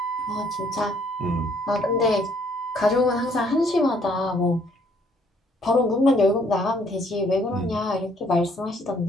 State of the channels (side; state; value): both; normal; correlation 0.64